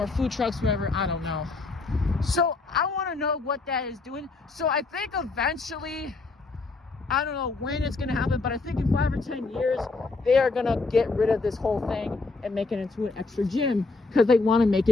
food trucks, whatever, I don't know. So I want to know what that is doing. So I think eventually, I don't know when it's going to happen, but I think in 5 or 10 years, they are going to get rid of this whole thing and make it into an extra gym because they want to make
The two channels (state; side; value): quieter; right; 3.8 dB